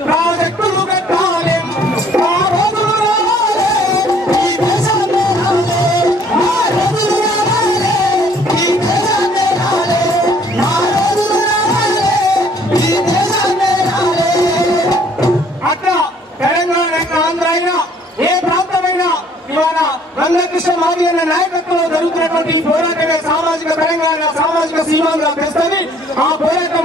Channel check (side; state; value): both; normal; correlation 0.59